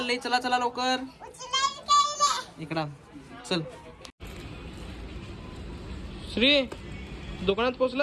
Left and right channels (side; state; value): both; identical; correlation 1.00